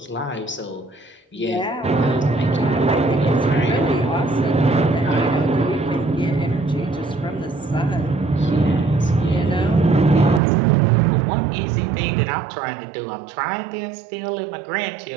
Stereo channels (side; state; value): left; drops out; at 10.4 s